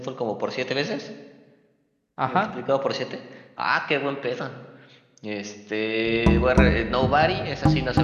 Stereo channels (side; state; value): both; identical; correlation 1.00